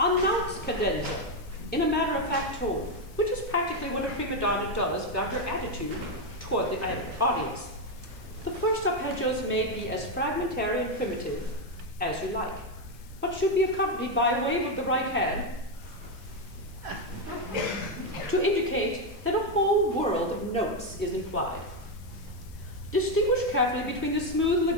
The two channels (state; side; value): noise; left; hiss, 25 dB below the sound